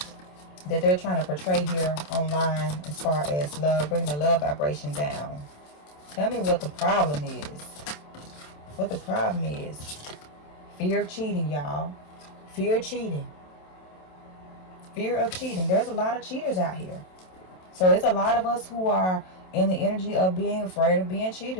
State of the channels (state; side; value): late; right; 27 ms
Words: that they're trying to portray here online as far as love, bringing the love vibration down. Tell me what the problem is. What the problem is. Fear of cheating, y'all. Fear of cheating. Fear of cheating. There's a lot of cheaters out here. So it's a lot of us who are in the energy of being afraid of being